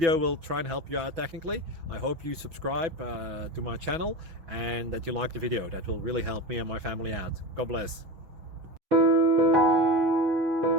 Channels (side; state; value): left; late; 6.1 ms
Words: will try and help you out technically. I hope you subscribe to my channel and that you like the video. That will really help me and my family out. God bless.